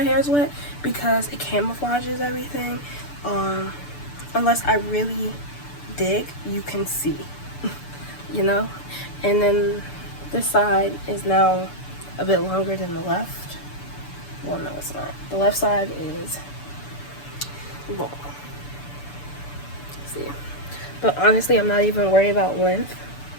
hair is wet because it camouflages everything. Unless I really dig, you can see, you know. And then this side is now a bit longer than the left. Well, no, it's not. The left side is long. See, but honestly, I'm not even worried about length.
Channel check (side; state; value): right; late; 6.9 ms